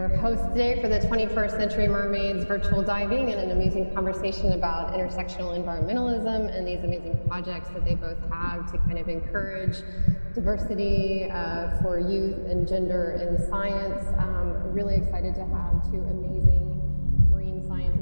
host today for the 21st Century Mermaids virtual diving and an amazing conversation about intersectional environmentalism and these amazing projects that they both have to kind of encourage diversity for youth and gender in science. Really excited to have two amazing marine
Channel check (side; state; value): both; inverted; correlation -1.00